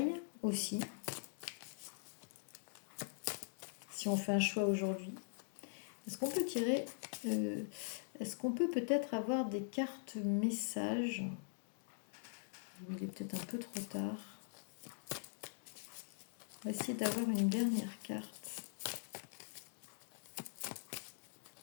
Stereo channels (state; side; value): silent; right; digital silence